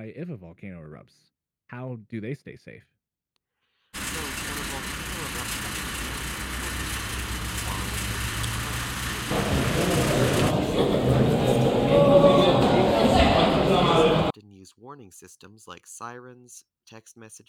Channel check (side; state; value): both; identical; correlation 1.00